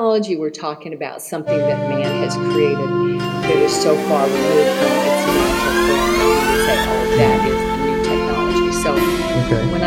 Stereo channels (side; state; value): both; identical; correlation 1.00